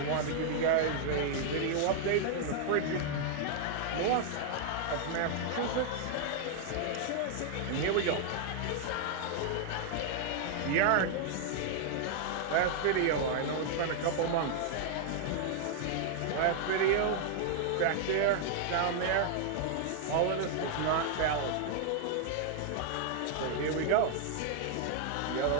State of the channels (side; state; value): both; different; correlation -0.01